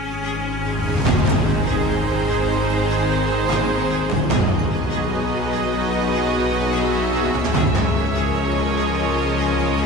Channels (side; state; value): both; normal; correlation 0.45